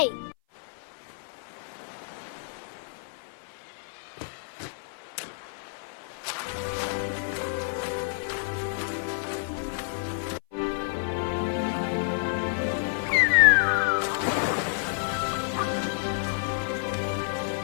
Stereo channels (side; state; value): right; silent; 56 dB below the other